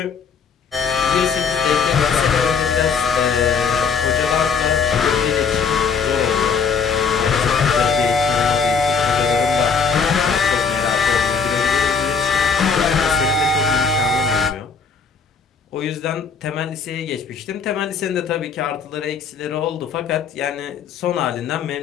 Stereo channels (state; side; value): quieter; right; 5.7 dB